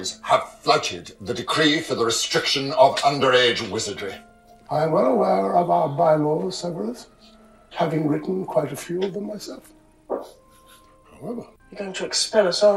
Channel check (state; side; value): identical; both; correlation 1.00